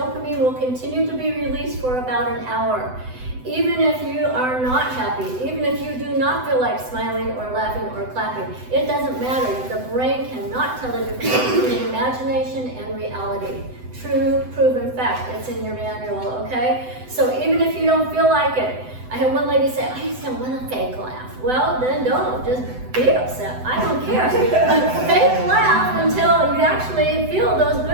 will continue to be released for about an hour. Even if you are not happy, even if you do not feel like smiling or laughing or clapping, it doesn't matter. The brain cannot tell the difference between imagination and reality. True, proven fact. It's in your manual, okay? So even if you don't feel like it, I had one lady say, I just don't want a fake laugh. Well, then don't. Just be upset. I don't care. But fake laugh until you actually feel those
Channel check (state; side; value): late; left; 7.9 ms